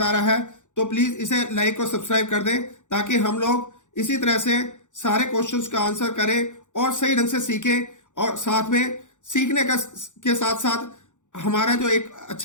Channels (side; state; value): right; late; 0.85 ms